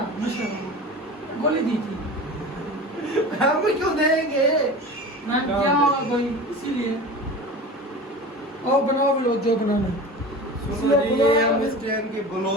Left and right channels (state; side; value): normal; both; correlation 0.34